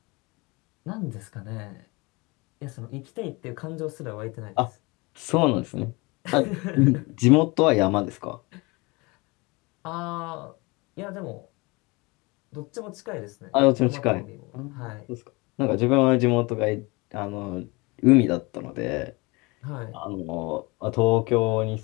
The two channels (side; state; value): right; quieter; 25.9 dB